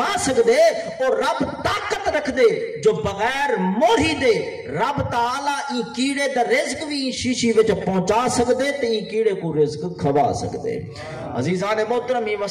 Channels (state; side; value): identical; both; correlation 1.00